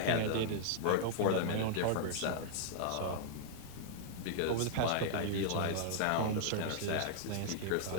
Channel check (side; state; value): both; different; correlation -0.01